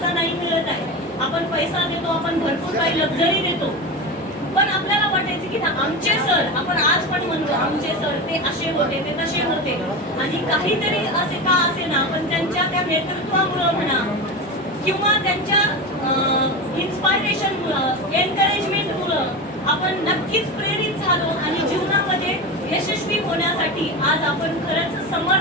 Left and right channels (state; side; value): normal; both; correlation 0.23